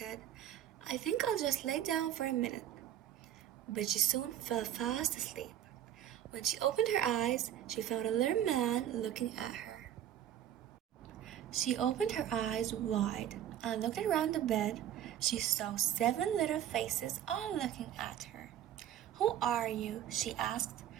"I think I'll just lay down for a minute." But she soon fell fast asleep. When she opened her eyes, she found a little man looking at her. She opened her eyes wide and looked around the bed. She saw 7 little faces all looking at her. "Who are you?" she asked.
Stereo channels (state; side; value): quieter; left; 11.0 dB